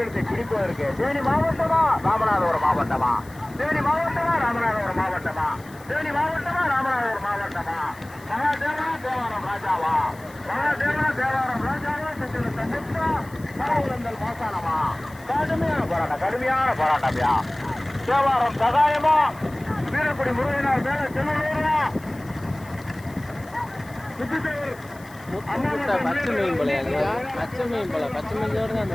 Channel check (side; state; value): left; noise; hiss, 24 dB below the sound